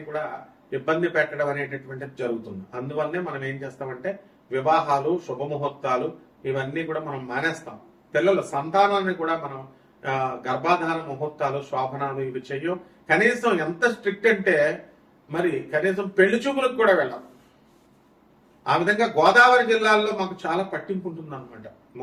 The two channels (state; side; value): identical; both; correlation 1.00